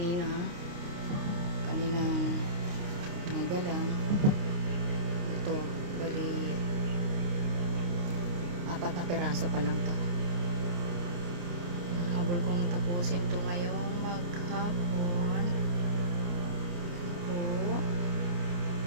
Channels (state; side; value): late; left; 29 ms